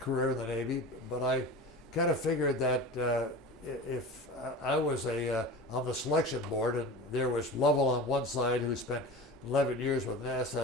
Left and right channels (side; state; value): both; normal; correlation 0.32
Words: in the Navy, but I kind of figured that if I was on the selection board, and there was Lovell on one side who spent 11 years with